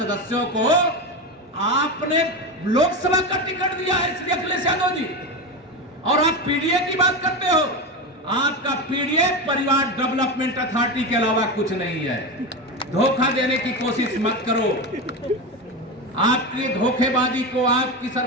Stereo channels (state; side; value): normal; both; correlation 0.18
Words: को आपने लोकसभा का टिकट दिया है श्री अखिलेश यादव जी, और आप पीडीए की बात करते हो। आपका पीडीए परिवार डेवलपमेंट अथॉरिटी के अलावा कुछ नहीं है। धोखा देने की कोशिश मत करो। आपकी धोखेबाजी को, आपकी